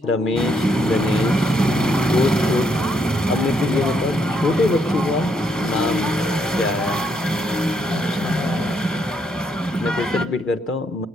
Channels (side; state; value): both; normal; correlation 0.74